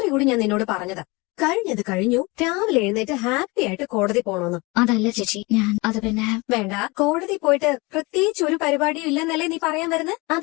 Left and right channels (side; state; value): right; quieter; 25.3 dB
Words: കൂടി ഞാൻ നിന്നോട് പറഞ്ഞതാ, കഴിഞ്ഞത് കഴിഞ്ഞു, രാവിലെ എഴുന്നേറ്റ് ഹാപ്പി ആയിട്ട് കോടതി പോണോന്ന്. അതല്ല ചേച്ചി, അത് പിന്നെ വേണ്ട, കോടതി പോയിട്ട് പ്രത്യേകിച്ച് ഒരു പരിപാടിയും ഇല്ലെന്നല്ലേ നീ പറയാൻ വരുന്നത്?